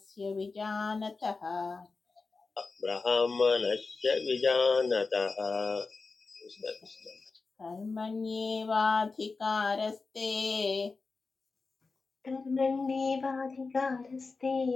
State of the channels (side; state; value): right; quieter; 4.1 dB